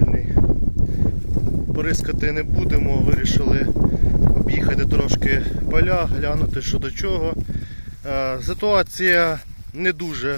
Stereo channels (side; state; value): both; inverted; correlation -1.00